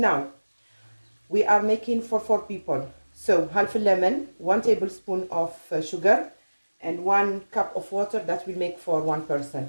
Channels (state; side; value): inverted; both; correlation -1.00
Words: we are making for 4 people. So half a lemon, 1 tablespoon of sugar, and 1 cup of water. That will make for 1 person.